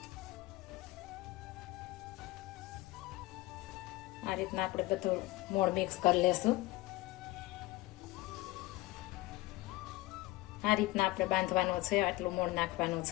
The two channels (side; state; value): right; quieter; 19.5 dB